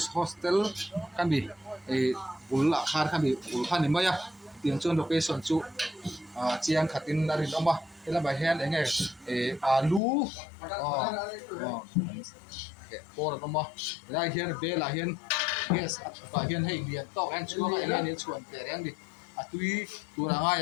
Hostel kan bị ulla khar kan bị ul khan mai tiếng chon location chu chiang khatin narin oma ela ba hen enge alu por oma la hian be la hian yes ba hian hei lian to an chuang a enge ni chuan te reng di atui tura nga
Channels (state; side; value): drops out; right; at 10.0 s